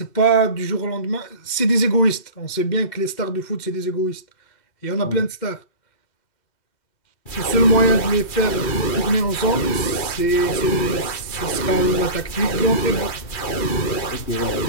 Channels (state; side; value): late; right; 2.7 ms